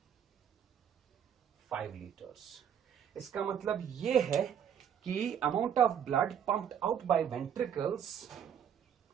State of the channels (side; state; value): left; quieter; 8.6 dB